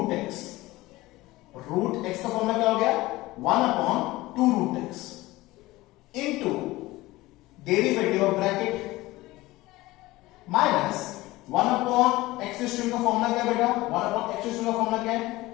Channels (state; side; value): quieter; right; 19.0 dB